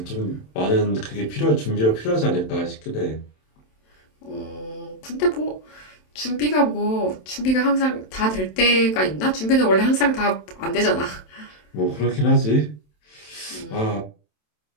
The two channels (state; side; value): late; right; 27 ms